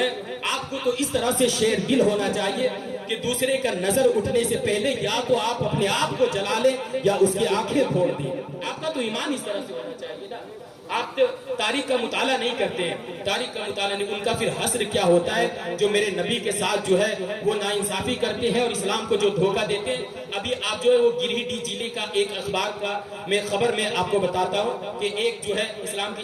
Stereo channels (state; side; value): identical; both; correlation 1.00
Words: آپ کو تو اس طرح سے شیر دل ہونا چاہیے کہ دوسرے کا نظر اٹھنے سے پہلے یا تو آپ اپنے آپ کو جلا لیں یا اس کی آنکھیں پھوڑ دیں۔ آپ کا تو ایمان اس طرح سے ہونا چاہیے نا۔ آپ تاریخ کا مطالعہ نہیں کرتے ہیں، تاریخ کا مطالعہ نہیں، ان کا پھر حسر کیا ہوتا ہے جو میرے نبی کے ساتھ جو ہے وہ ناانصافی کرتے ہیں اور اسلام کو جو دھوکہ دیتے ہیں۔ ابھی آپ جو ہے وہ گریڈی ضلع کا ایک اخبار کا میں خبر میں آپ کو بتاتا ہوں کہ ایک جو ہے اسلام کی